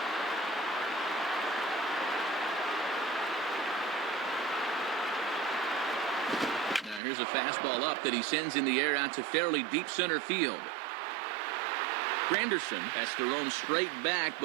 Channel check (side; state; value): left; drops out; at 7.0 s